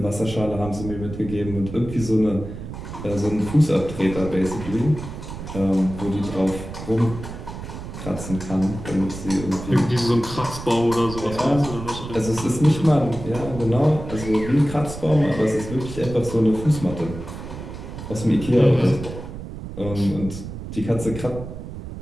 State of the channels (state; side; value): noise; right; rumble, 10 dB below the sound